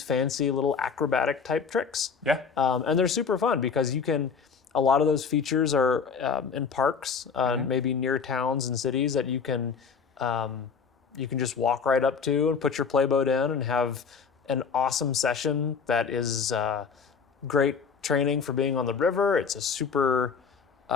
fancy little acrobatic type tricks. Yeah. And they're super fun because you can. A lot of those features are in parks, maybe near towns and cities that you can just walk right up to and put your playboat in and have an awesome session that is great training for being on the river. It's a super,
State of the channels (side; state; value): right; quieter; 5.9 dB